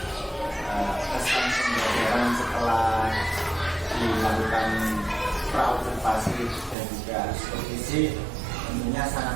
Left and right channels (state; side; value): drops out; left; at 6.8 s